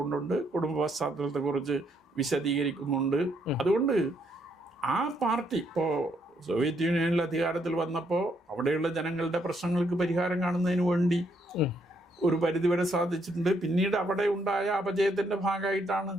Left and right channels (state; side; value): normal; both; correlation 0.73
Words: കുടുംബ പശ്ചാത്തലത്തെക്കുറിച്ച് വിശദീകരിക്കുന്നുണ്ട്. അതുകൊണ്ട് ആ പാർട്ടി ഇപ്പോൾ സോവിയറ്റ് യൂണിയനിൽ അധികാരത്തിൽ വന്നപ്പോൾ അവിടെയുള്ള ജനങ്ങളുടെ പ്രശ്നങ്ങൾക്ക് പരിഹാരം കാണുന്നതിന് വേണ്ടി ഒരു പരിധിവരെ സാധിച്ചിട്ടുണ്ട്. പിന്നീട് അവിടെ ഉണ്ടായ അപജയത്തിന്റെ ഭാഗമായിട്ടാണ്